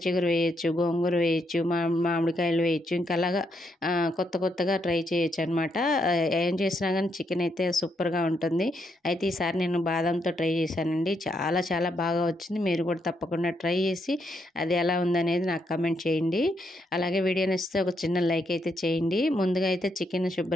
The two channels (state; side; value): normal; both; correlation 0.78